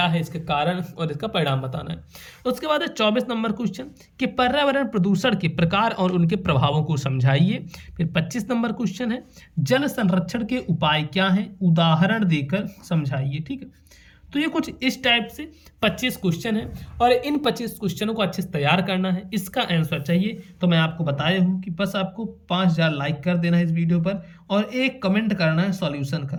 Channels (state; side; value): identical; both; correlation 1.00